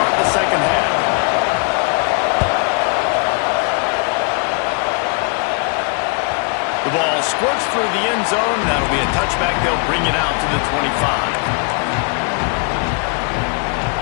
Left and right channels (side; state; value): right; quieter; 36.5 dB